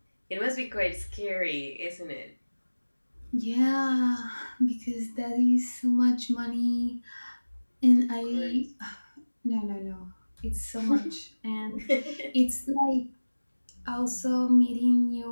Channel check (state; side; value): inverted; both; correlation -1.00